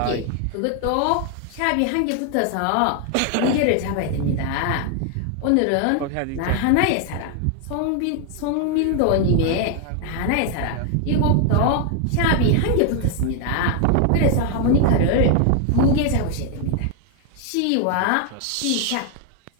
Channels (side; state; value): both; different; correlation 0.00